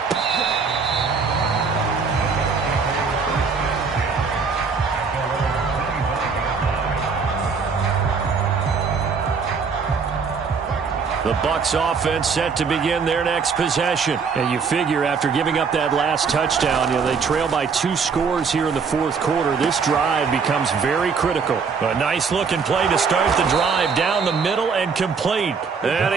The Bucs offense set to begin their next possession. And you figure after giving up that last touchdown, they trail by 2 scores here in the fourth quarter. This drive becomes very critical. A nice looking play to start the drive down the middle and complete. And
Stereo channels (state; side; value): quieter; left; 5.4 dB